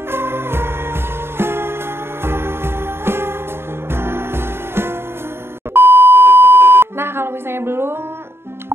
Nah, kalau misalnya belum,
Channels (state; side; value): late; left; 0.11 ms